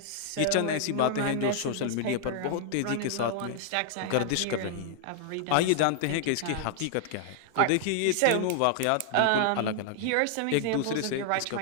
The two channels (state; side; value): different; both; correlation 0.00